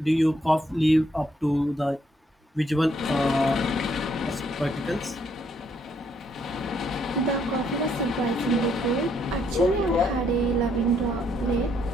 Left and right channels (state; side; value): normal; both; correlation 0.71